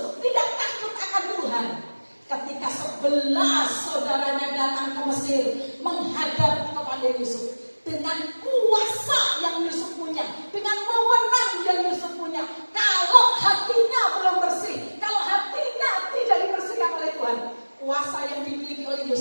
tidak takut akan Tuhan, ketika 11 saudaranya datang ke Mesir menghadap kepada Yusuf, dengan kuasa yang Yusuf punya, dengan wewenang yang Yusuf punya, kalau hatinya belum bersih, kalau hatinya tidak dibersihkan oleh Tuhan, kuasa yang dimiliki oleh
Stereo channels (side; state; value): both; inverted; correlation -1.00